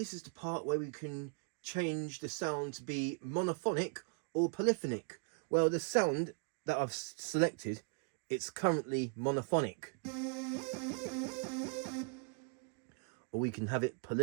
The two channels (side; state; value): left; quieter; 36.0 dB